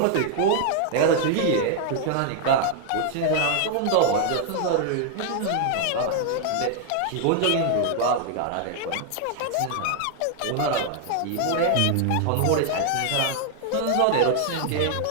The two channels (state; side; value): different; both; correlation 0.00